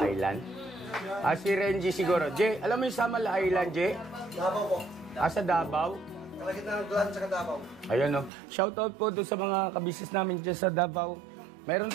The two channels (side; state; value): left; drops out; at 8.3 s